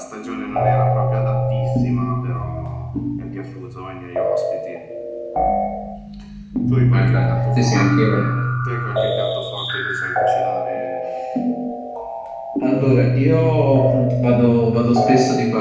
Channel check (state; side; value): identical; both; correlation 1.00